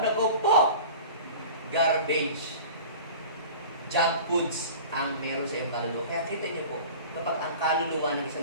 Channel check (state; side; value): inverted; both; correlation -0.39